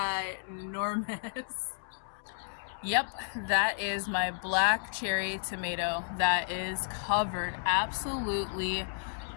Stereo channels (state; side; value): silent; right; 56 dB below the other